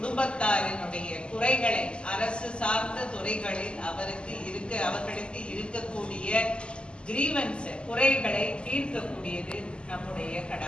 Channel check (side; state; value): right; late; 0.052 ms